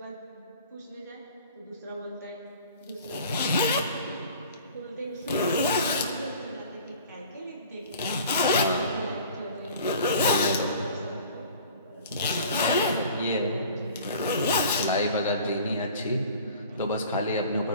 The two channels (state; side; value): inverted; both; correlation -0.46